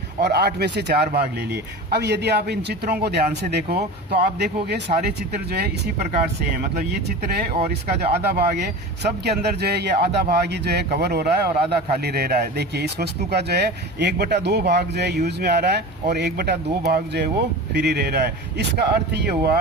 और 8 में से 4 भाग ले लिए। अब यदि आप इन चित्रों को ध्यान से देखो तो आप देखोगे सारे चित्र जो है इसी प्रकार से है। मतलब ये चित्र है और इसका जो आधा भाग है, सब के अंदर जो है ये आधा भाग ही जो है कवर हो रहा है और आधा खाली रह रहा है। देखिए इस वस्तु का जो है 1/2 भाग जो है यूज में आ रहा है और 1/2 भाग जो है वो फ्री रह रहा है। इसका अर्थ ये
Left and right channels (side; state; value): both; normal; correlation 0.31